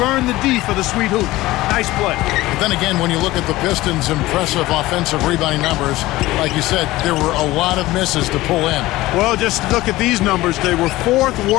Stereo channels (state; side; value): quieter; right; 17.9 dB